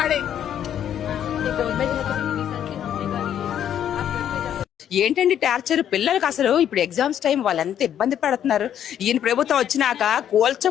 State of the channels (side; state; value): right; quieter; 10.0 dB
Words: ఏంటండి టార్చర్ పిల్లలకి? అసలు ఇప్పుడు ఎగ్జామ్స్ టైం వాళ్ళు ఎంత ఇబ్బంది పడుతున్నారు. ఈయన ప్రభుత్వం వచ్చినాక